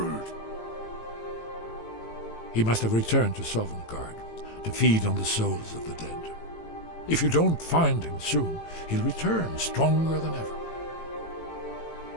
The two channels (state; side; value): late; right; 18 ms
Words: He must have returned to Sovngarde to feed on the souls of the dead. If you don't find him soon, he'll return stronger than ever.